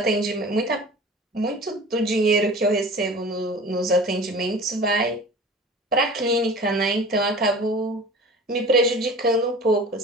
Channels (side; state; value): both; normal; correlation 0.40